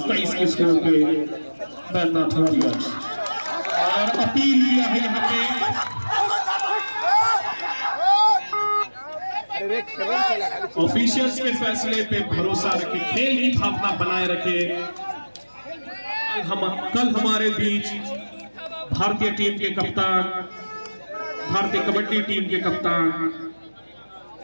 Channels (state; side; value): inverted; both; correlation -1.00